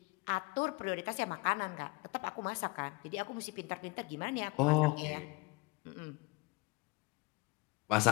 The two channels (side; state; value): right; quieter; 27.0 dB